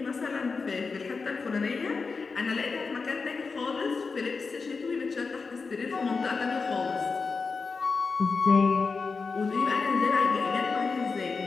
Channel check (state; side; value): quieter; right; 4.6 dB